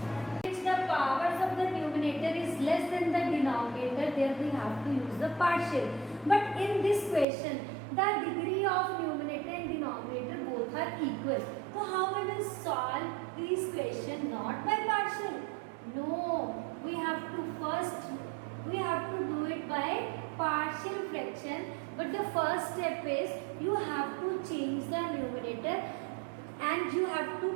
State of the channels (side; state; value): left; drops out; at 7.2 s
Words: The powers of the numerator is less than the denominator, there we have to use the partial. But in this question, the degree of numerator and denominator both are equal. So how we will solve these questions? Not by partial. No, we have to do it by partial fraction. But the first step is you have to change the numerator and you have to